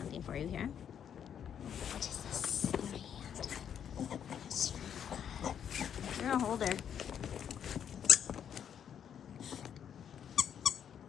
for you here. What is this in my hand? Yes. You're a holder.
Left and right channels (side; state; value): right; quieter; 8.7 dB